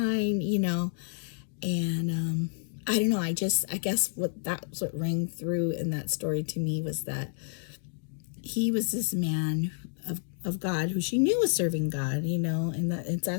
and I don't know. I guess what rang through in that story to me was that he was this man of God, who she knew was serving God, and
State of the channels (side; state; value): right; silent; digital silence